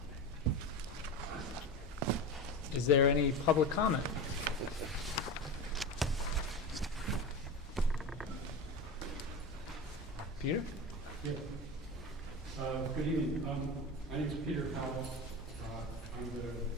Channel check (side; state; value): both; normal; correlation 0.25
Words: Is there any public comment? Peter? Yeah. Good evening. My name is Peter Powell. I'm the